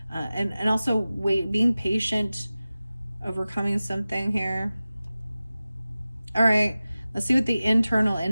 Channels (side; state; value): both; inverted; correlation -0.96